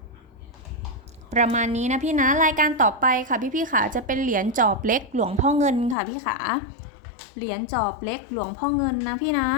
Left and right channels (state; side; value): drops out; right; at 6.0 s